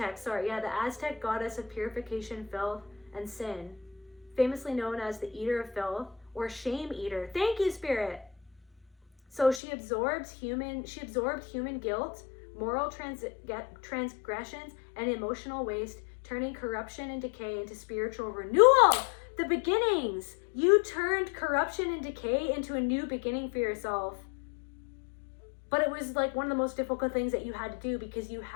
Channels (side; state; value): right; drops out; at 9.6 s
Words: goddess of purification, filth, and sin, famously known as the eater of filth or shame eater. Thank you, Spirit. So she absorbed human guilt, moral transgressions, and emotional waste, turning corruption and decay into spiritual renewal. The beginnings. You turned corruption and decay into a new beginning for yourself. But it was like one of the most difficult things that you had to do, because you